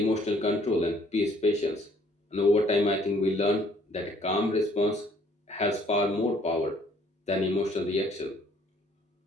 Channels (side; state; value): both; normal; correlation 0.62